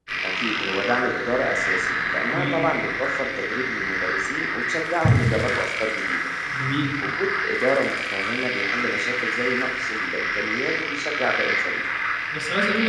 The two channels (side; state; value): both; identical; correlation 1.00